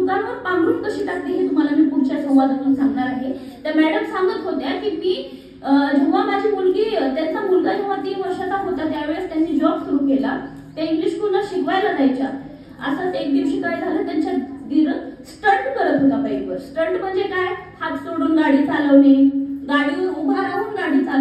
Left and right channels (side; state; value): both; identical; correlation 1.00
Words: पांघरून कशी टाकते हे तुम्हाला मी पुढच्या संवादातून सांगणार आहे. त्या मॅडम सांगत होत्या की मी जेव्हा माझी मुलगी, त्यांचा मुलगा जेव्हा 3 वर्षाचा होता त्यावेळेस त्यांनी जॉब सुरू केला. त्या इंग्लिश स्कूलला शिकवायला जायच्या. असंच एक दिवशी काय झालं, त्यांच्या दीर स्टंट करत होता बाईकवर. स्टंट म्हणजे काय? हात सोडून गाडी चालवणे, गाडीवर उभा राहून गाडी